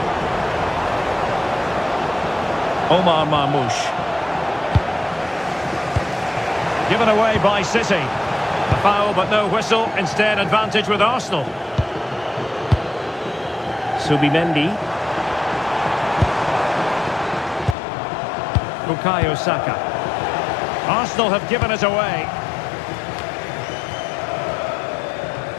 Omar Marmoush. Given away by City. A foul but no whistle. Instead, advantage with Arsenal. Subimendi. Bukayo Saka. Arsenal have given it away.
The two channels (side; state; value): right; drops out; at 17.8 s